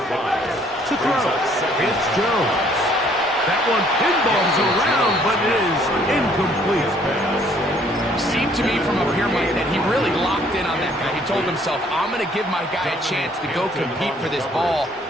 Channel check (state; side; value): normal; both; correlation 0.62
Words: 5. To throw, it's Jones. That one pinballs around, but it is incomplete. Seemed to me from up here, Mike, that he really locked in on that guy. He told himself, I'm going to give my guy a chance to go compete for this ball.